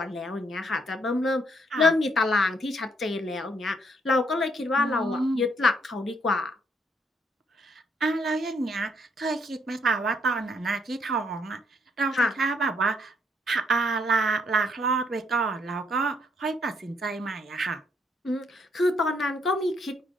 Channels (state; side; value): normal; both; correlation 0.71